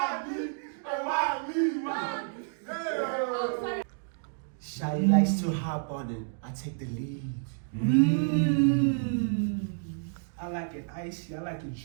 me? Hey, why me? Why me? Oh, sorry. Shawty likes to hop on it. I take the lead. I like it icy, I like it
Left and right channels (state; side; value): silent; left; digital silence